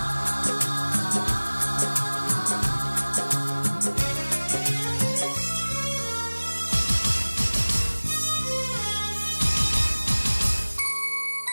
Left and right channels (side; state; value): both; inverted; correlation -1.00